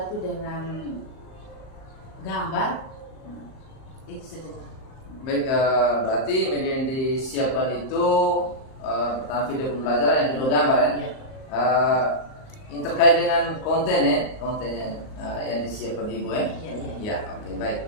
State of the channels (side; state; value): right; late; 38 ms